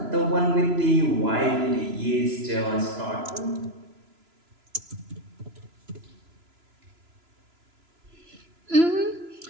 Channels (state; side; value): late; left; 3.0 ms